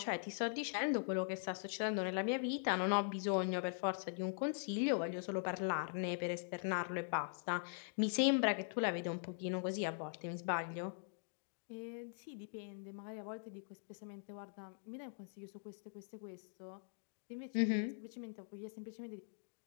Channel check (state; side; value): silent; right; digital silence